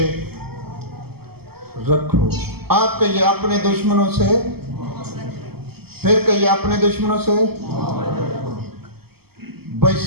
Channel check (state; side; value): late; left; 0.96 ms